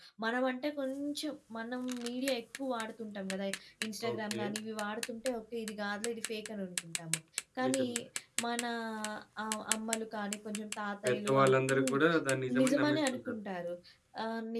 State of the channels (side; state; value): both; identical; correlation 1.00